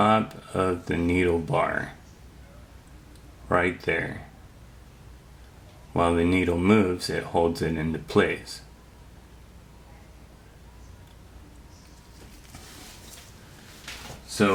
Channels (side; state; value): both; identical; correlation 1.00